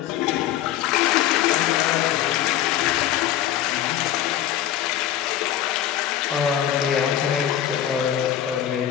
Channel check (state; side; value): quieter; right; 11.4 dB